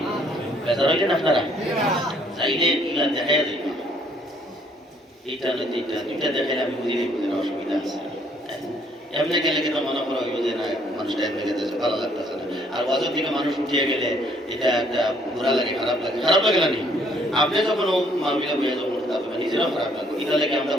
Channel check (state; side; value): normal; both; correlation 0.64